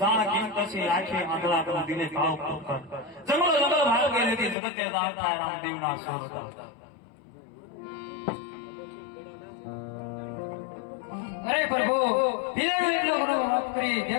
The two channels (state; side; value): drops out; right; at 4.5 s